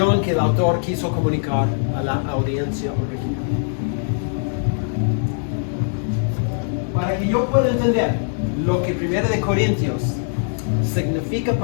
que el autor quiso comunicar a la audiencia original. Para que yo pueda entender lo que 1 de Corintios significa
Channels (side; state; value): right; silent; digital silence